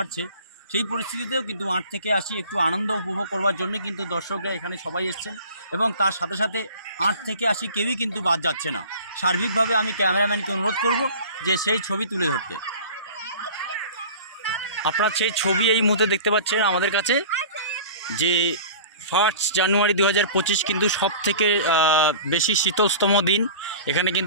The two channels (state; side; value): inverted; both; correlation -0.41